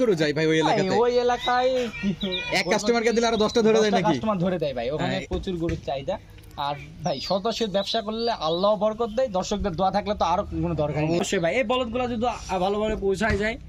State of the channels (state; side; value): identical; both; correlation 1.00